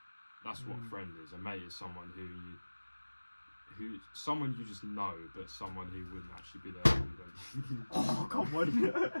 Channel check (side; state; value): both; inverted; correlation -1.00